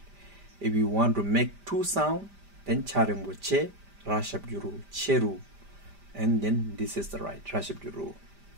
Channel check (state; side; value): late; left; 5.0 ms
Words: If you want to make two sound, then cha dengbo che, ra shabjuru cheru, and then this is the right ra shabjuru